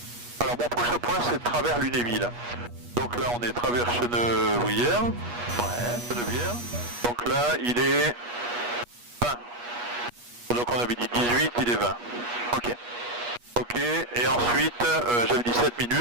Alors mon prochain point, c'est travers Lunéville. Donc là, on est travers Chenevrières. Ouais, Chenevrières. Donc là, il est 20. Donc on avait dit 18, il est 20. Ok. Ok, Ok, et ensuite, j'avais dit 7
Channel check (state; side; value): late; left; 8.3 ms